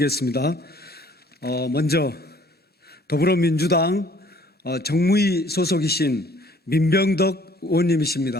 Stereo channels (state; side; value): normal; both; correlation 0.57